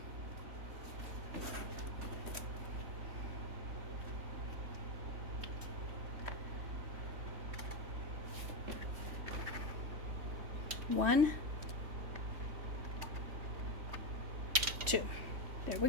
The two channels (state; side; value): late; left; 3.2 ms